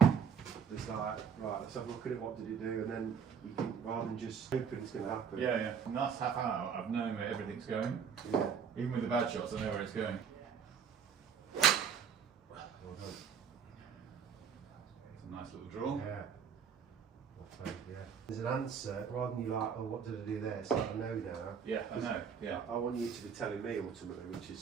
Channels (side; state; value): left; quieter; 6.9 dB